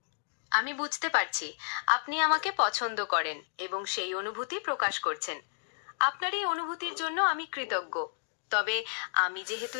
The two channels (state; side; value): silent; right; digital silence